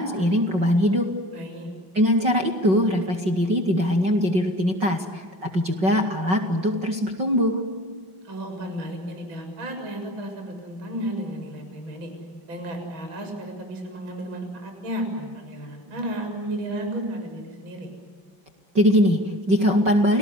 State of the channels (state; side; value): late; left; 5.4 ms